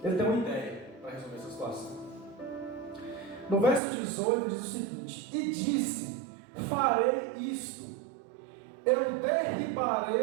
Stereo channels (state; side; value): drops out; left; at 3.8 s